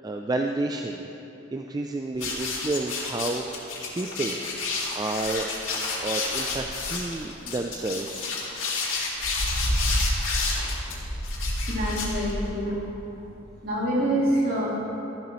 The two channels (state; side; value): normal; both; correlation 0.47